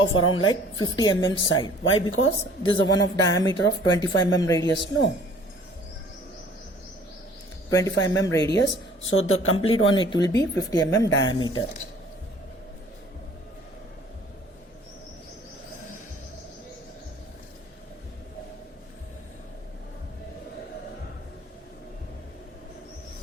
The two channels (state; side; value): normal; both; correlation 0.52